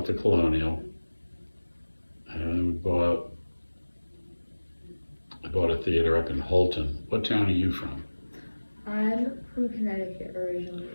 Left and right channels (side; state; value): both; inverted; correlation -1.00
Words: the Colonial, and I bought a theater up in Holton. What town are you from? I'm from Connecticut